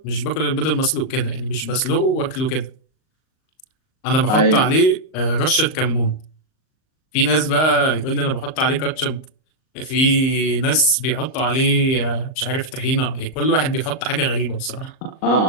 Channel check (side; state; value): right; late; 38 ms